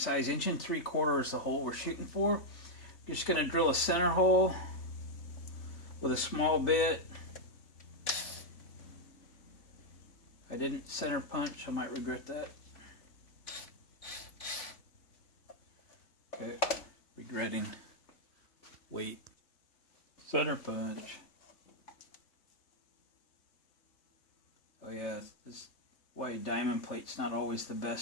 1 3/4 is the hole we're shooting for. I'm just going to drill a center hole with a small bit. I didn't center punch. I might regret that. Okay, regretting. Wait. Center punch. Oh yeah, this why diamond plate's not always the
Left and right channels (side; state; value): right; late; 3.4 ms